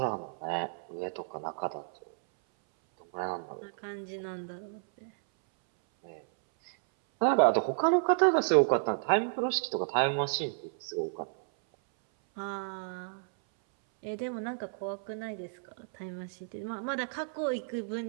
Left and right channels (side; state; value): left; silent; 57 dB below the other